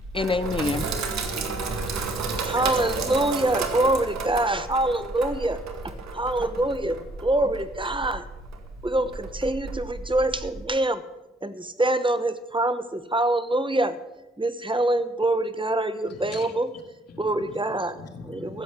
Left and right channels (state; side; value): normal; both; correlation 0.64